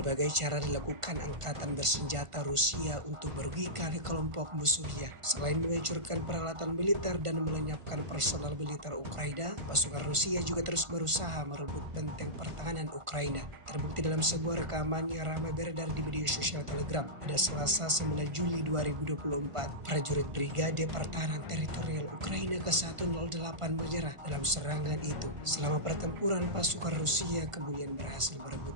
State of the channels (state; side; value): late; left; 1.5 ms